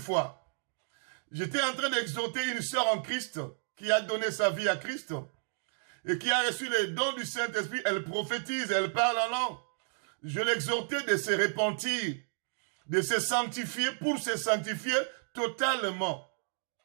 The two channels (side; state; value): left; silent; digital silence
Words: j'étais en train d'exhorter une sœur en Christ qui a donné sa vie à Christ et qui a reçu les dons du Saint-Esprit. Elle prophétise, elle parle en langue. Je l'exhortais de se repentir, de se sanctifier pour se sanctifier totalement.